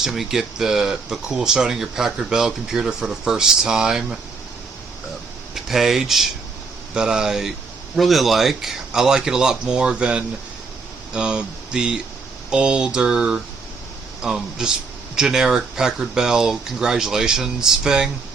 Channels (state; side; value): quieter; left; 4.5 dB